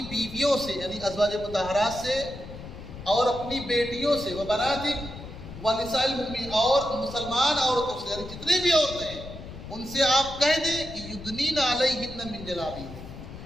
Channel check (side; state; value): left; noise; rumble, 12 dB below the sound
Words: بیویوں سے یعنی ازواج مطہرات سے اور اپنی بیٹیوں سے، و بناتک ونساء المؤمنین، اور مسلمان عورتوں سے یعنی جتنی بھی عورتیں ہیں ان سے آپ کہہ دیں کہ یدنین علیہن من جلابیبہن،